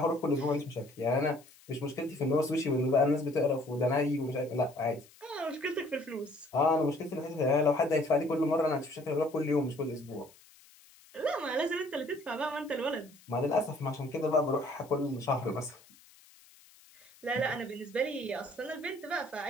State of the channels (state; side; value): noise; left; hiss, 25 dB below the sound